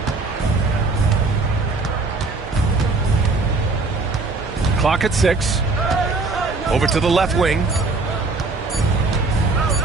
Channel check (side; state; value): left; quieter; 3.7 dB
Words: Clock at 6. Over to the left wing.